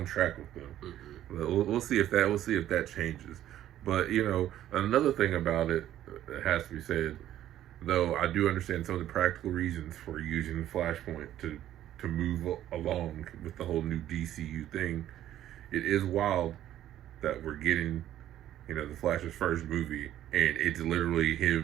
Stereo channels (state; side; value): quieter; left; 12.3 dB